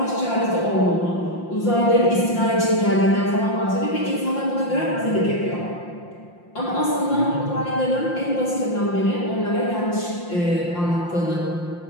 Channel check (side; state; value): right; late; 5.7 ms